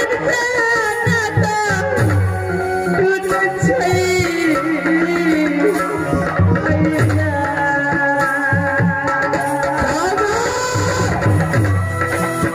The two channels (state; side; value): identical; both; correlation 1.00